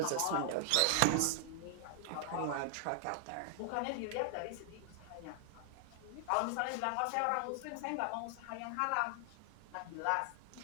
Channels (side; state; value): both; different; correlation 0.00